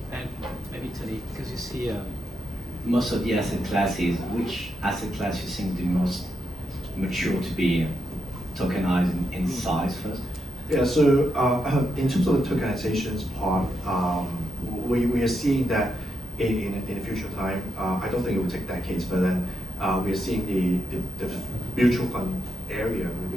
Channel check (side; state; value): both; normal; correlation 0.84